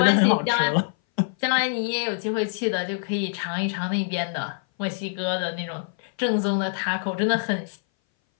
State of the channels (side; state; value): right; silent; 59 dB below the other